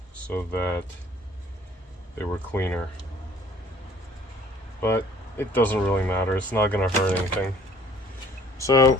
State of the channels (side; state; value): both; normal; correlation 0.55